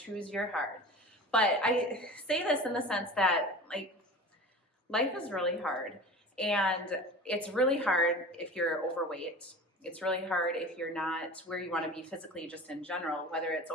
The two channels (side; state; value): both; normal; correlation 0.36